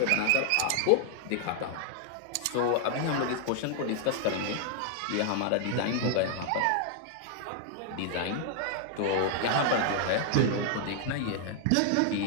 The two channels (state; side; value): different; both; correlation 0.00